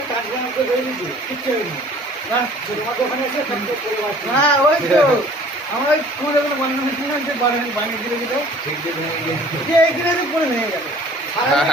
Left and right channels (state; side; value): normal; both; correlation 0.51